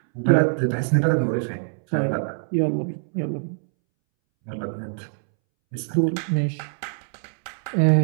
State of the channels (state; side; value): silent; left; 63 dB below the other